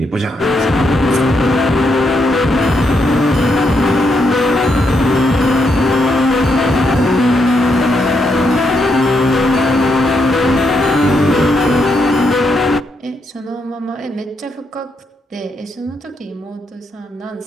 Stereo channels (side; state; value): both; normal; correlation 0.79